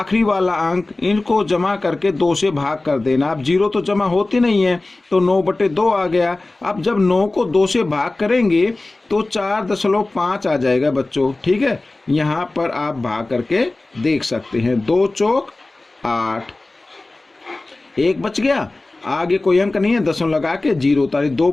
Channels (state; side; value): quieter; right; 3.0 dB